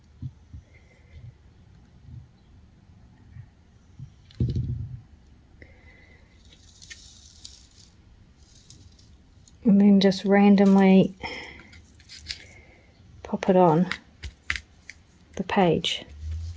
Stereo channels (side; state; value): both; identical; correlation 1.00